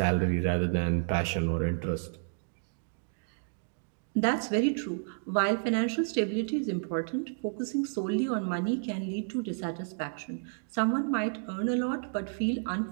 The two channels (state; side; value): silent; left; digital silence